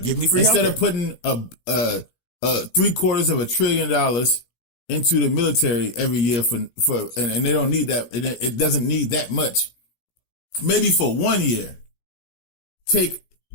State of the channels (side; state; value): right; late; 17 ms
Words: Give me free instead healthcare. of putting $750 billion into the military every year for and they don't need that. It doesn't need that much. Maybe for 1 year,